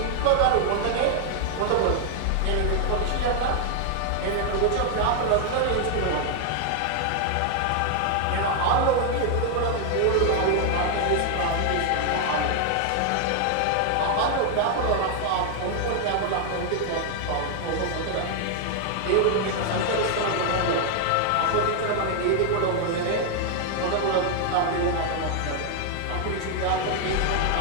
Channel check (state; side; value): different; both; correlation 0.00